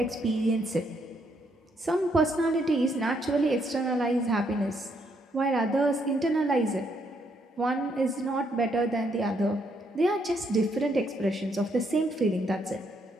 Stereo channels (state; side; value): normal; both; correlation 0.73